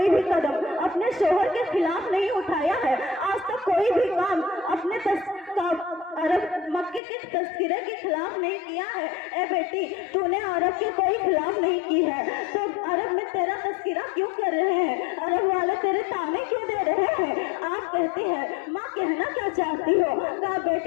भी कदम अपने शोहर के खिलाफ नहीं उठाया है, आज तक कोई भी काम अपने अरब मक्के के तस्करे के खिलाफ नहीं किया है। ए बेटी, तूने अरब के कोई खिलाफ नहीं की है तो अरब में तेरा तस्करा क्यों कर रहे हैं? अरब वाले तेरे ताने क्यों दे रहे हैं? आप कहती है माँ कहना क्या चाहती हो? कहा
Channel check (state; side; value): drops out; right; at 7.0 s